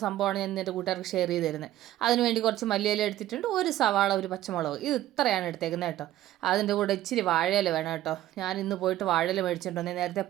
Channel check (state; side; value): quieter; left; 14.0 dB